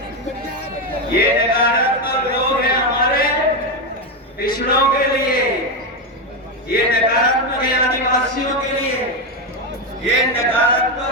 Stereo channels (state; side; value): normal; both; correlation 0.09